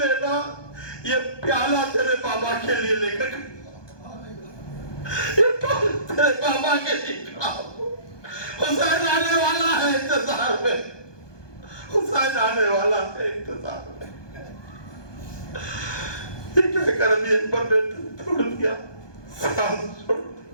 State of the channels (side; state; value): right; late; 1.2 ms